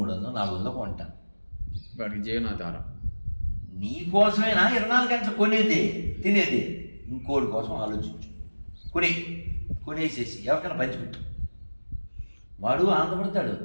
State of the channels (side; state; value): both; inverted; correlation -1.00